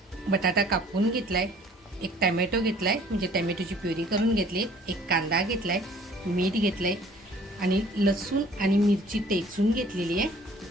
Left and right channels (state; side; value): normal; both; correlation 0.54